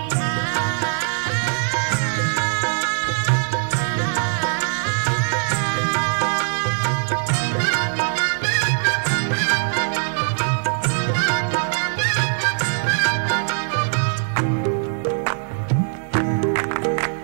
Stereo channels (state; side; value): silent; left; digital silence